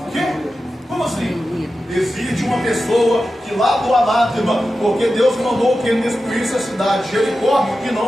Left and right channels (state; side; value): normal; both; correlation 0.92